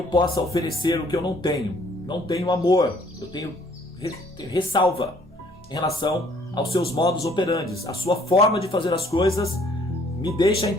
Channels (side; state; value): both; normal; correlation 0.61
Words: possa oferecer o que eu não tenho. Não tenho amor, eu tenho ressalva em relação aos seus modus operandi. A sua forma de fazer as coisas me deixa